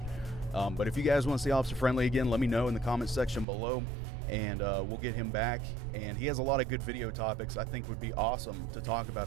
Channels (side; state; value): left; drops out; at 3.5 s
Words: But if you guys want to see Officer Friendly again, let me know in the comment section below, and we'll get him back. And he has a lot of good video topics I think would be awesome to talk about